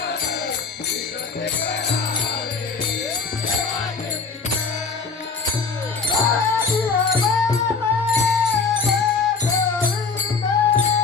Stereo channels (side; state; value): right; quieter; 4.7 dB